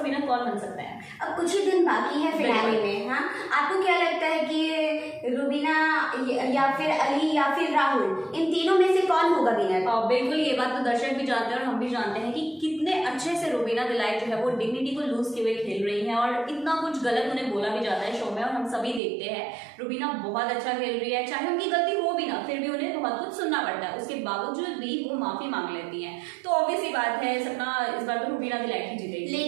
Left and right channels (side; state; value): left; drops out; at 19.0 s